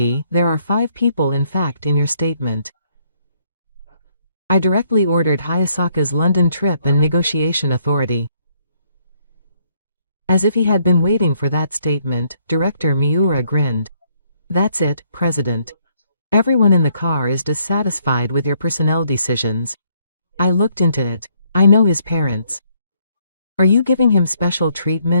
there are 5 people in fact in your statement. I directly ordered Hayasaka's London trip and negotiation authority. As if he had been waiting for that statement, Director Miura grinned. That's it, President. Everyone in the car is dissatisfied with your personnel decisions. I looked into it. I know his parents. Are you giving him special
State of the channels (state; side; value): inverted; both; correlation -0.69